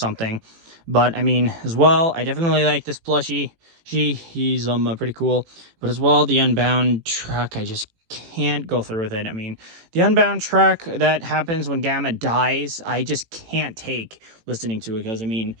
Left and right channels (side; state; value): left; late; 18 ms